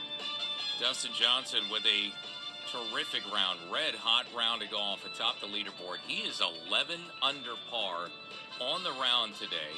Dustin Johnson with a terrific round, red-hot round of golf atop the leaderboard. He is 11 under par on the round today,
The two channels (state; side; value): identical; both; correlation 1.00